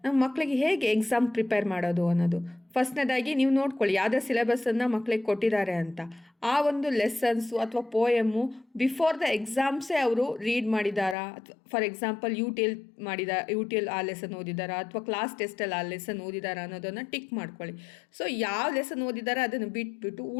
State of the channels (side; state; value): right; drops out; at 11.2 s